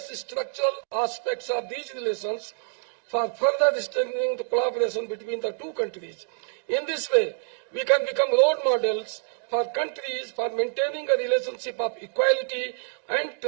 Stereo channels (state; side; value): silent; left; digital silence